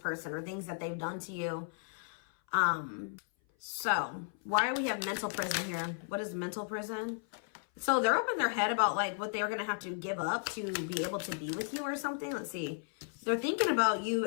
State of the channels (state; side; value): silent; right; 55 dB below the other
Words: or things that they've done to you. So why do we have mental prison here? What is mental prison? So they're up in their head about like what they're going to have to give up to be able to be with you or something. Let's see. They're thinking about